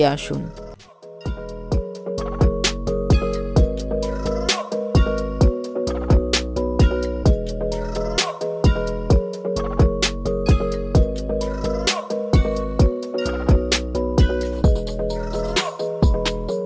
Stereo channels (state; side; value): identical; both; correlation 1.00